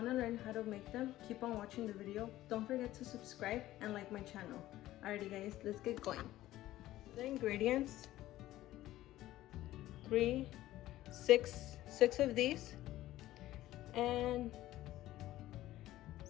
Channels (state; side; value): quieter; right; 15.1 dB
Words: to learn how to make them, keep on watching the video. Don't forget to subscribe and like my channel. Alrighty guys, let's get going. The ingredients: six of these, and